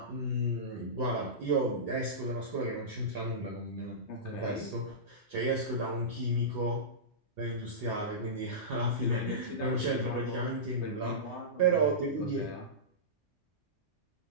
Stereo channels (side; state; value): both; normal; correlation -0.18